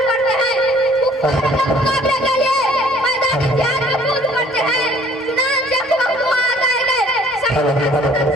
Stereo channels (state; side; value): normal; both; correlation 0.56